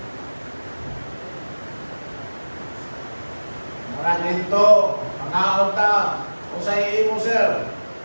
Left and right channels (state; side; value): inverted; both; correlation -1.00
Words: Mga nito, mga unta, kung sa iyo mo, sir,